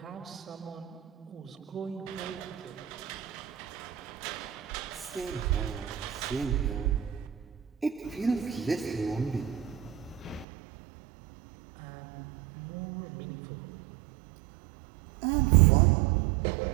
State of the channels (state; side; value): drops out; left; at 10.5 s